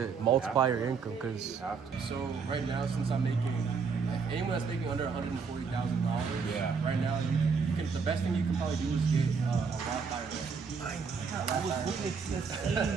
multiply your income because. So right now, since I'm making, anyone that's making under $140,000, Yeah. right now you can. The best thing you can probably do is get a Roth IRA. I was looking at the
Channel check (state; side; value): quieter; left; 5.4 dB